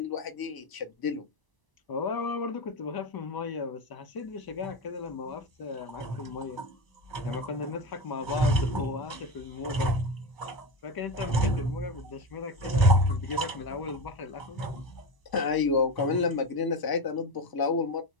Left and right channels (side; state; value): right; late; 1.0 ms